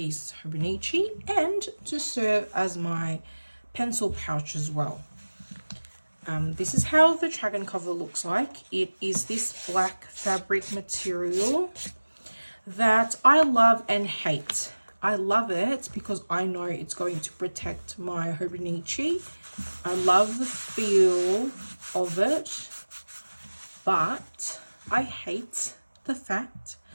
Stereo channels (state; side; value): inverted; both; correlation -1.00